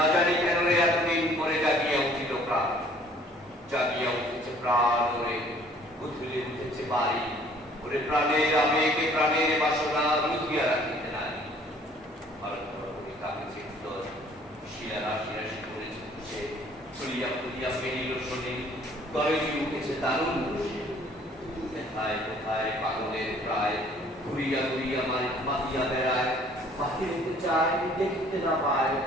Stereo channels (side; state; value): both; normal; correlation 0.56